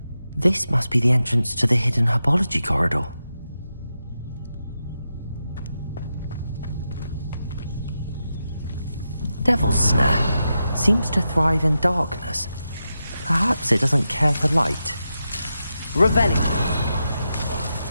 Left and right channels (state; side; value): inverted; both; correlation -0.88